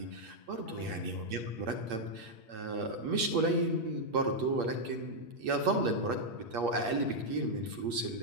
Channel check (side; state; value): left; late; 8.6 ms